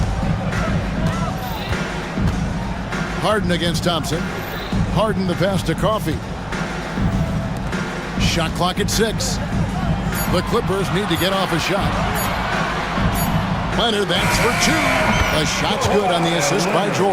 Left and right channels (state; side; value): identical; both; correlation 1.00